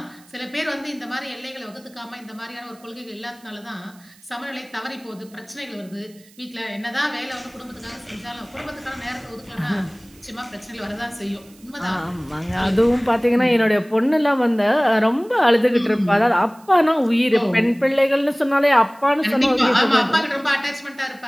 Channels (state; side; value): noise; right; hiss, 27 dB below the sound